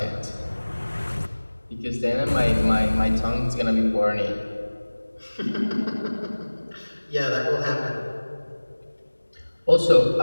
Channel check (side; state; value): both; inverted; correlation -1.00